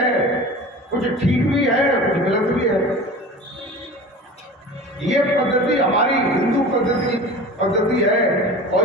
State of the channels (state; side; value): normal; both; correlation 0.36